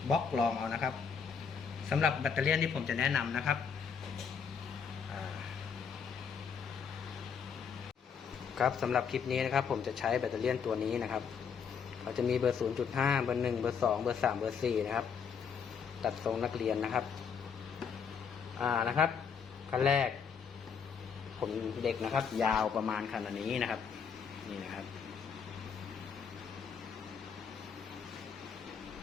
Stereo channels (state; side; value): quieter; right; 6.5 dB